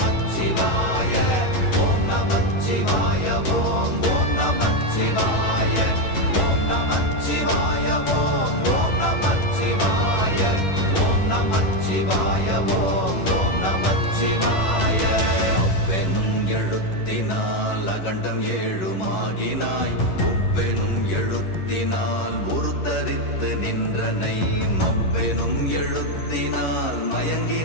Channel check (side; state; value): right; late; 11 ms